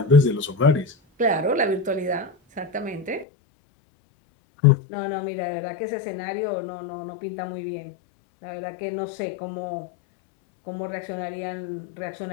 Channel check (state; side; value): drops out; right; at 3.2 s